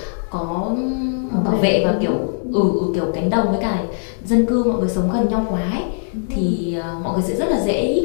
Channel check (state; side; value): silent; right; digital silence